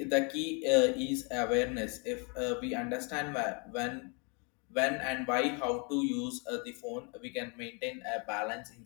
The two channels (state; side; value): quieter; right; 33.3 dB